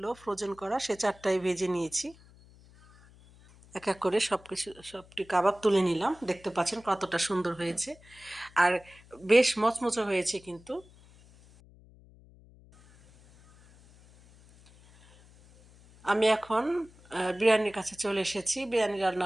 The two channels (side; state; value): left; noise; hum, 25 dB below the sound